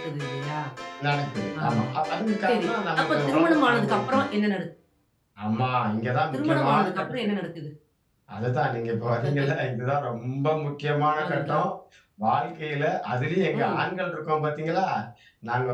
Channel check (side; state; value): both; identical; correlation 1.00